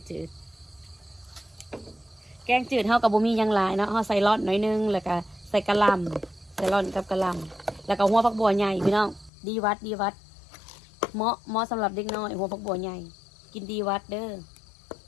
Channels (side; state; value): right; drops out; at 9.3 s